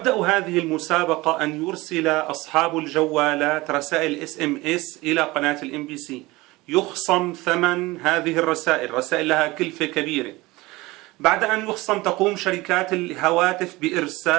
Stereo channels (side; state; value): left; quieter; 21.0 dB